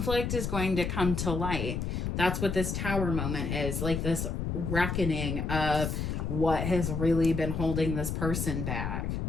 is going to come to light. That's what this Tower moment is, like this reckoning of what has really been holding this person back.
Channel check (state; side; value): noise; left; rumble, 2 dB below the sound